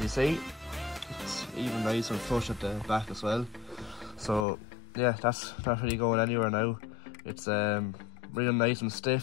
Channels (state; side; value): drops out; right; at 4.5 s